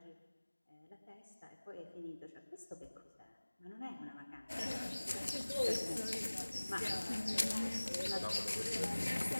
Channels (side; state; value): both; inverted; correlation -1.00